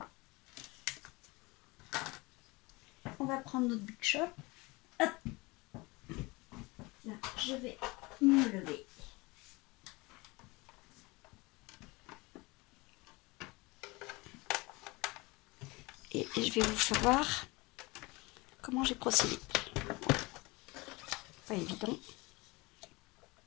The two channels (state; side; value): quieter; right; 24.2 dB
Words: On va prendre notre Big Shop. Hop. Là, je vais me lever. Et je vais vous faire voir comment j'ai procédé. Pas évident.